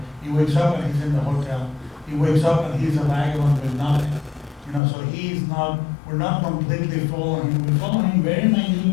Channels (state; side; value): drops out; right; at 4.8 s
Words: He wakes up and he's in the hotel. He wakes up and he's a vagabond with nothing. You know, so he's not, we're not completely following him. We follow him very